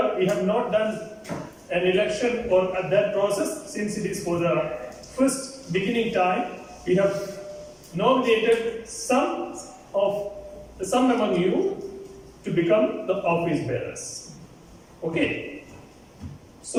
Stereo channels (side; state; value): both; identical; correlation 1.00